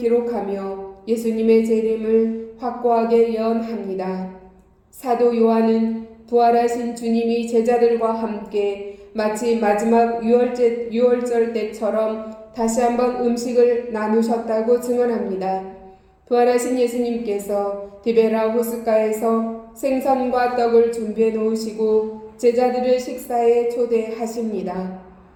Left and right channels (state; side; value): identical; both; correlation 1.00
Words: 예수님의 재림을 확고하게 예언합니다. 사도 요한은 부활하신 주님이 제자들과 함께 마치 마지막 유월절 때처럼 다시 한번 음식을 나누셨다고 증언합니다. 부활하신 예수님께서 디베라 호숫가에서 생선과 떡을 준비해 놓으시고 제자들을 식사에 초대하십니다.